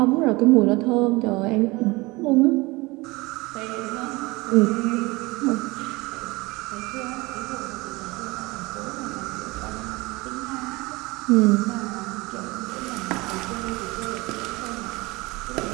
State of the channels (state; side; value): quieter; left; 22.9 dB